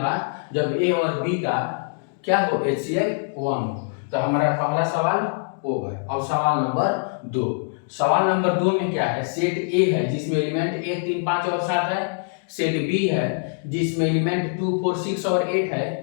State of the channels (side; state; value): right; silent; digital silence